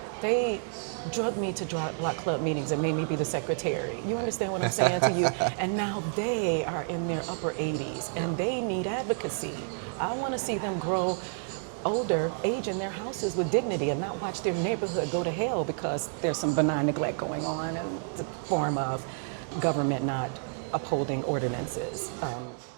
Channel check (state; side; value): silent; left; 58 dB below the other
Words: They drugged me to block club meetings and made me be the secretary. You understand what I'm saying to you? And now they are in their upper 80s and they need advocacy. I want to see them grow older, age in their houses with dignity and not watch their neighborhood go to hell because there's some benign neglect going on in the form of government not upholding ordinances.